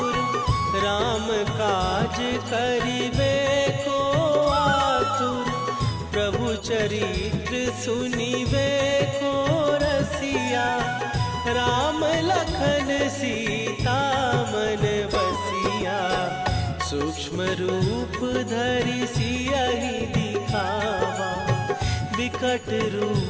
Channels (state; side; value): identical; both; correlation 1.00